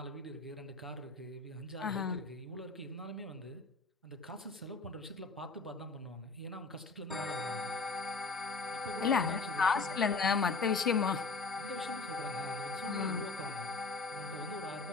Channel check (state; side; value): quieter; right; 4.1 dB